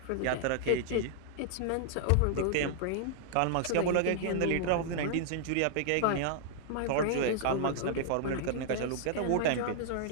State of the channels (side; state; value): both; different; correlation -0.01